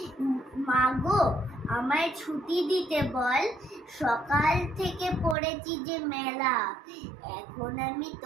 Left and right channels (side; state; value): left; drops out; at 5.4 s